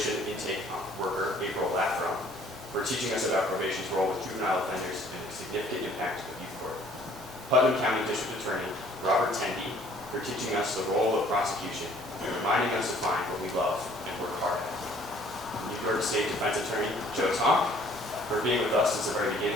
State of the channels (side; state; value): both; normal; correlation 0.57